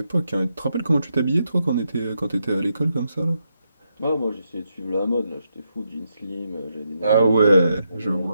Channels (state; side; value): inverted; both; correlation -0.83